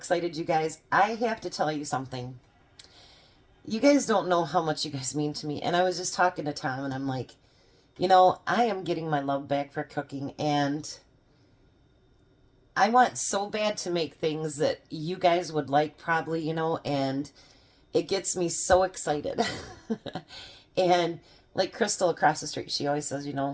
you guys. I have to tell you something. You guys don't know how much you guys mean to me. And I was just talking to Tom, and I'm like, you know, I am getting my love back for cooking, and I want so bad to make things that you guys would like probably, you know, and it gets me so excited. And like Crystal across the street, she always says, you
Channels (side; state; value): both; identical; correlation 1.00